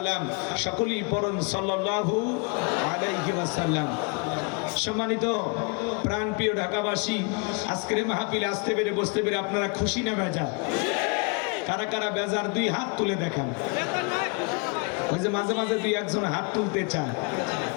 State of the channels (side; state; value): right; quieter; 32.5 dB